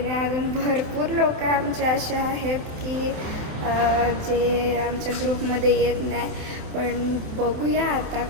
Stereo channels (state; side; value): late; left; 27 ms